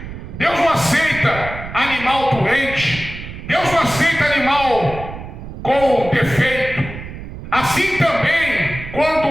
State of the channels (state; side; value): noise; right; rumble, 11 dB below the sound